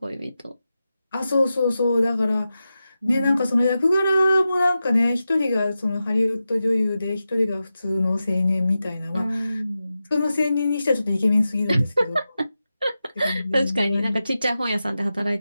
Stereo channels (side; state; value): both; inverted; correlation -0.92